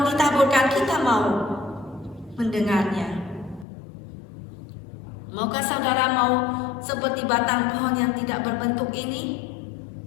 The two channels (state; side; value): drops out; right; at 3.7 s